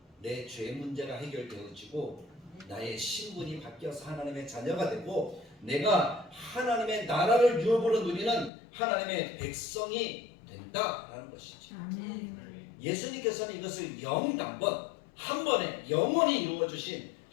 내 죄 문제가 해결되어지고 나의 신분이 바뀌어서 하나님의 자녀가 되고 내가 하나님의 나라를 유업으로 누리는 하나님의 백성이 된다라는 것이죠. 아멘. 예수님께서는 이것을 영단번 한 번에 영원히 이루어주신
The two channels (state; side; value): drops out; right; at 8.5 s